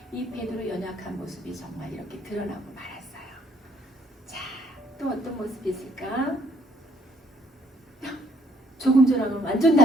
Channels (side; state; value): both; normal; correlation 0.66